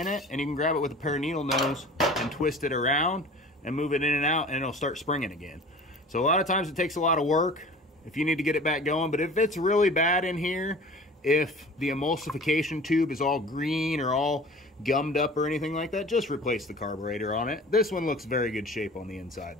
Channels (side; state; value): both; normal; correlation 0.42